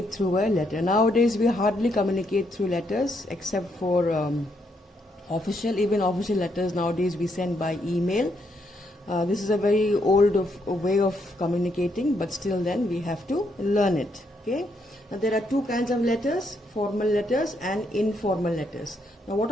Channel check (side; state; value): both; normal; correlation 0.76